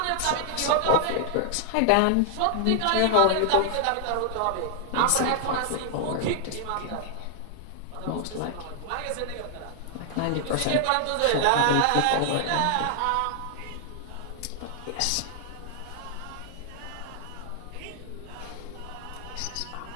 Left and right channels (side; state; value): both; different; correlation 0.00